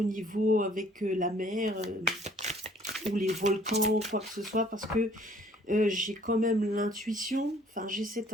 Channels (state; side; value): normal; both; correlation 0.58